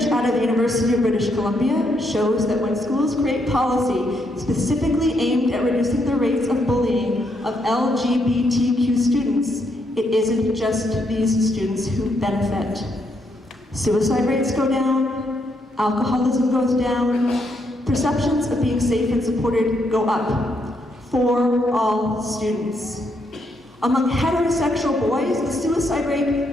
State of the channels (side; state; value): both; normal; correlation 0.76